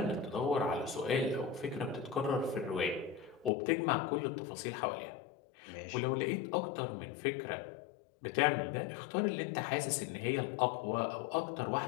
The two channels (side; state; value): right; drops out; at 3.5 s